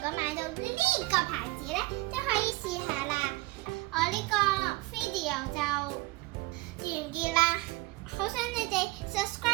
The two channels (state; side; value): quieter; left; 20.9 dB